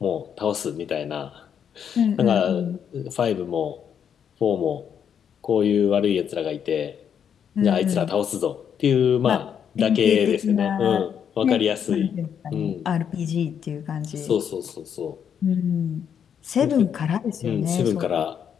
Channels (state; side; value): quieter; right; 8.1 dB